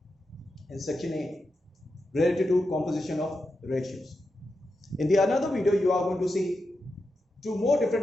in section A related to composition of ratios. In the another video, you are going to see two more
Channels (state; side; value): normal; both; correlation 0.88